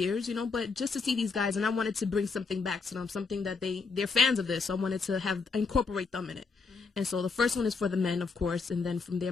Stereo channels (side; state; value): right; quieter; 4.6 dB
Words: you know, but just to see these guys, and I wanted to bring something back to them, something that they're fans of this, so I wanted to incorporate them in it. And so the first one is for the men, of course, and then from there